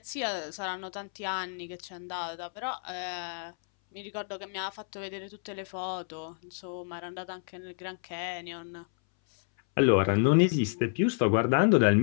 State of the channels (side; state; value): right; silent; 58 dB below the other